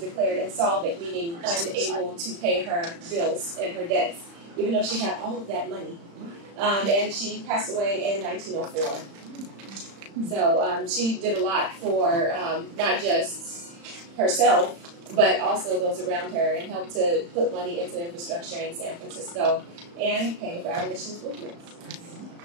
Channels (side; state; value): left; late; 35 ms